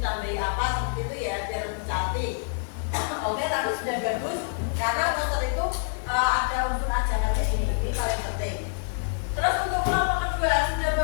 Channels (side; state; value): right; silent; digital silence